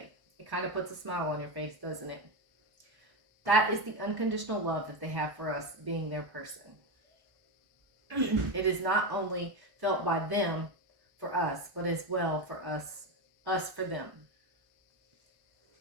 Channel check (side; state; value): left; late; 1.1 ms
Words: It kind of puts a smile on your face, doesn't it? That is the unconditional love that they have for us being their person. It is not only felt by them for us, but as well for us for them.